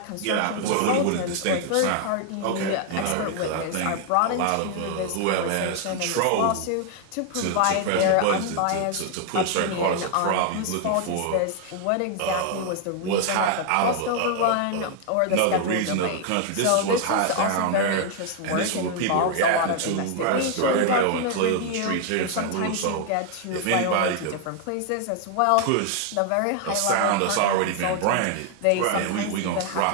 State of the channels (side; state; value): both; different; correlation 0.00